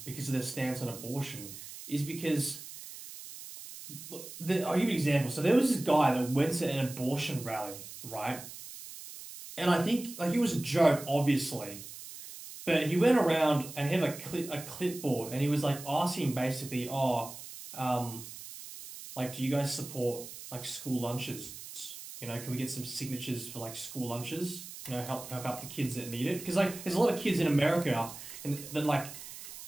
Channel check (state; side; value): noise; right; hiss, 13 dB below the sound